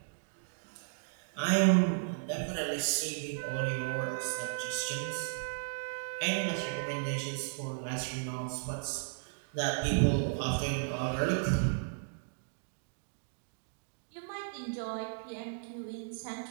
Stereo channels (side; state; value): left; silent; digital silence